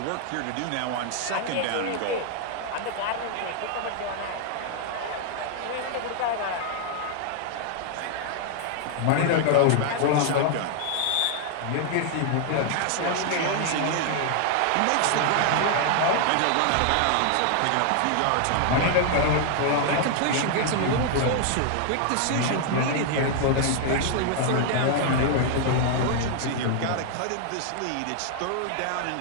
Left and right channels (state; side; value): different; both; correlation 0.00